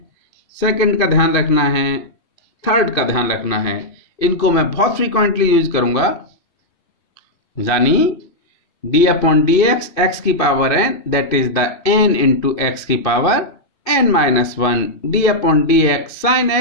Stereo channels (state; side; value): late; right; 2.7 ms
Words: सेकंड का ध्यान रखना है, थर्ड का ध्यान रखना है, इनको मैं बहुत फ्रीक्वेंटली यूज करूंगा, यानी d/dx x की power n, that is the n into x की power n-1, d/dx sin